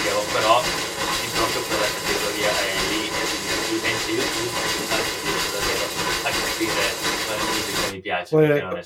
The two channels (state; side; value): identical; both; correlation 1.00